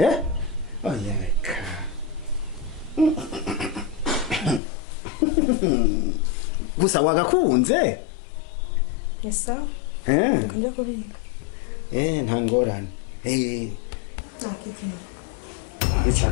oya reka gusa wagakunze ni sawa eh reka njya kubika nta ngorane nakikina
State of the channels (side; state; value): right; drops out; at 4.6 s